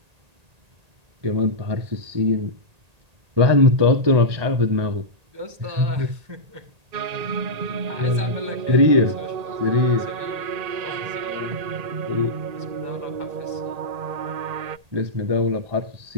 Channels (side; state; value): left; late; 1.8 ms